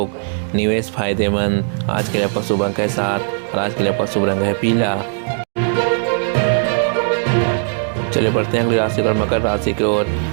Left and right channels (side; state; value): left; silent; digital silence